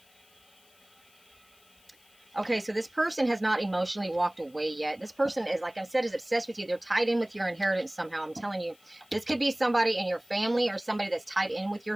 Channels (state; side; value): noise; left; hiss, 29 dB below the sound